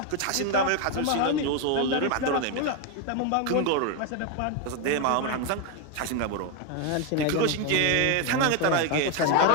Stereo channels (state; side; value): different; both; correlation 0.01